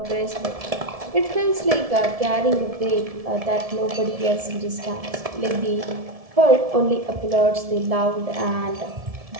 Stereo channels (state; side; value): late; left; 1.7 ms